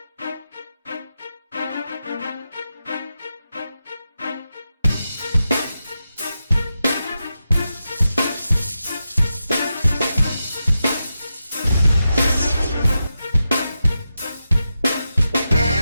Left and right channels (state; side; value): inverted; both; correlation -0.89